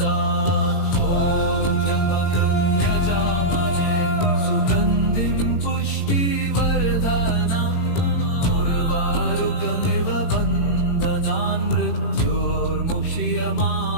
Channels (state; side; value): late; right; 18 ms